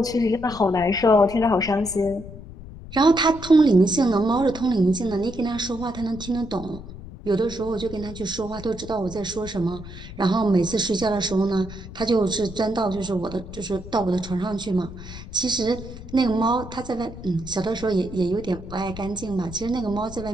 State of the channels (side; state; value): left; noise; rumble, 13 dB below the sound